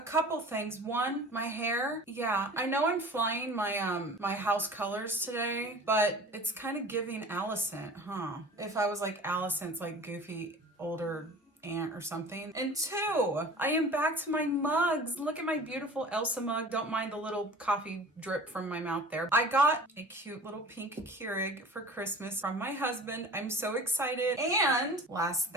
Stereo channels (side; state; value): both; normal; correlation 0.41